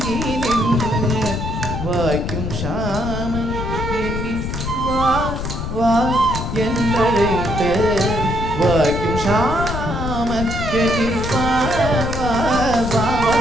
நின்று வாய்க்கும் ஷாமன் எண்ணி வா வா என்றழைத்து வாய்க்கும் ஷாமன் எண்ணி வா வா வா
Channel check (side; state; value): left; noise; rumble, 4 dB below the sound